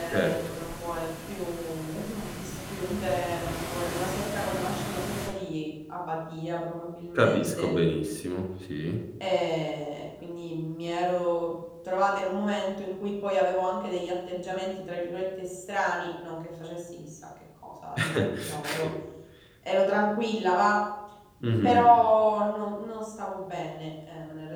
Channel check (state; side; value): identical; both; correlation 1.00